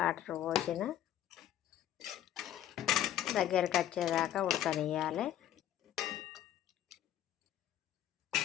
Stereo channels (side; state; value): right; quieter; 11.6 dB